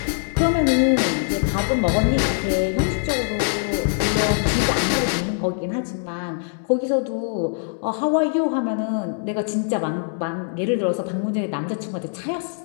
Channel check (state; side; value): silent; right; 64 dB below the other